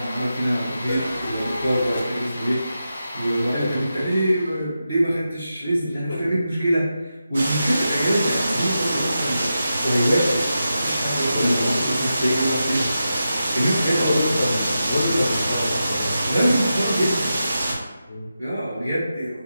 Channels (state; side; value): inverted; both; correlation -0.89